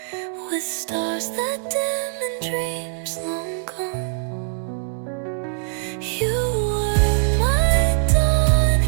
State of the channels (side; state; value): left; silent; 64 dB below the other